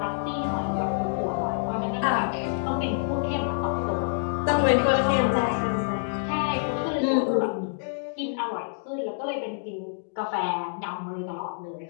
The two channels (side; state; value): right; silent; digital silence